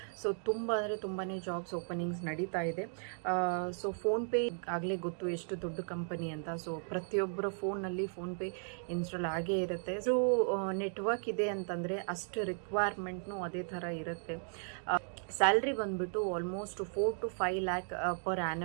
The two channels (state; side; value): silent; left; 54 dB below the other